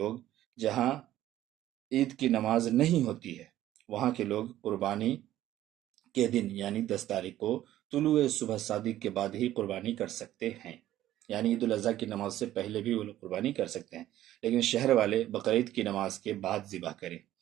جہاں عید کی نماز نہیں ہوتی ہے، وہاں کے لوگ قربانی کے دن یعنی 10 تاریخ کو طلوع صبح صادق کے بعد ہی قربانی کر سکتے ہیں، یعنی عید الاضحیٰ کی نماز سے پہلے بھی وہ لوگ قربانی کر سکتے ہیں، لیکن شہر والے بقرعید کی نماز کے بعد ذبح کریں۔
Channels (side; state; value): left; quieter; 13.5 dB